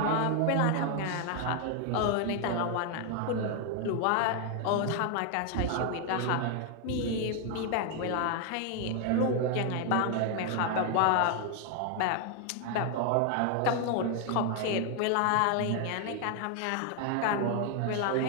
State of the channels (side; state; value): both; different; correlation 0.00